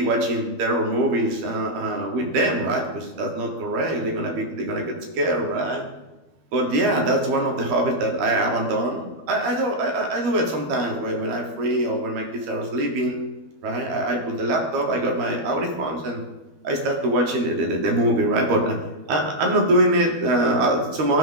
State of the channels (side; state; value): left; late; 12 ms